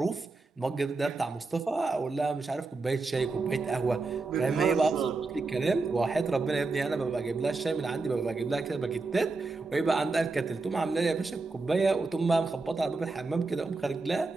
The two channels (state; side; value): quieter; left; 3.7 dB